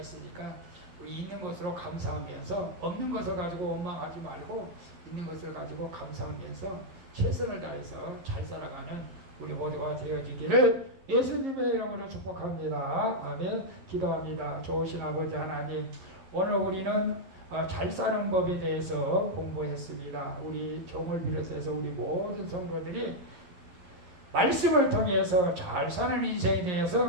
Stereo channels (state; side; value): late; left; 11 ms